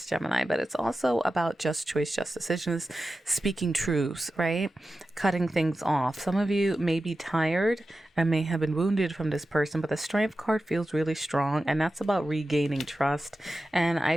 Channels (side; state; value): both; normal; correlation 0.93